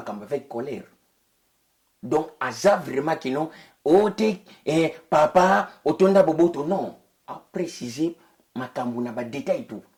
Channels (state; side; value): identical; both; correlation 1.00